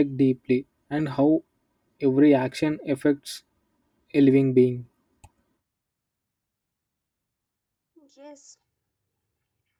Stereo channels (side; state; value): both; identical; correlation 1.00